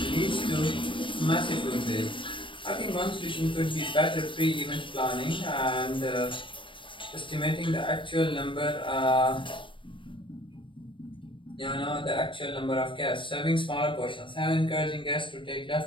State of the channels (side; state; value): right; late; 0.24 ms